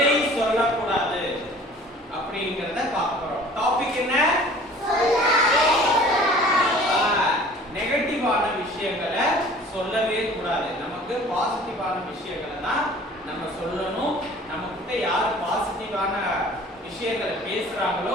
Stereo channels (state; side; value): normal; both; correlation 0.48